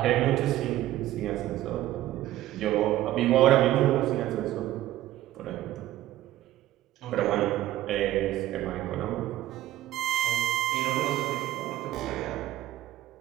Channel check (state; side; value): quieter; left; 14.4 dB